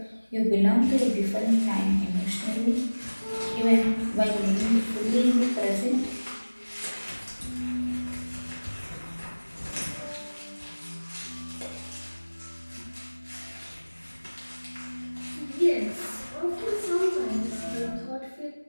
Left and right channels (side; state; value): both; inverted; correlation -1.00